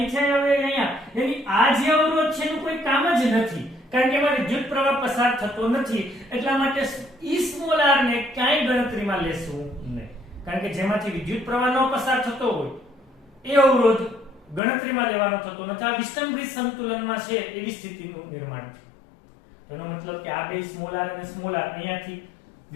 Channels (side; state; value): right; drops out; at 14.6 s